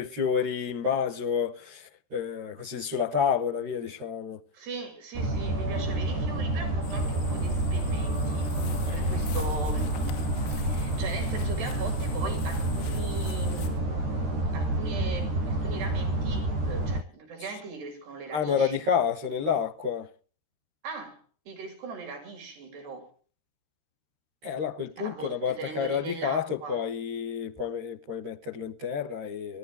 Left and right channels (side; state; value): left; late; 13 ms